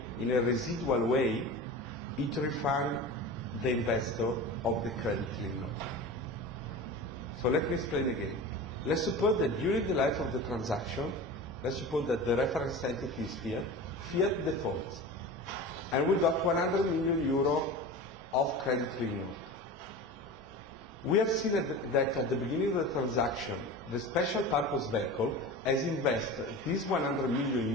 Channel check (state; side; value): normal; both; correlation 0.32